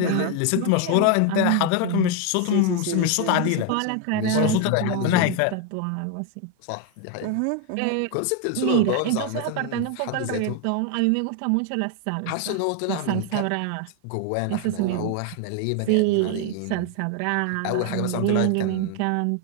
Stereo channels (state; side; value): different; both; correlation 0.01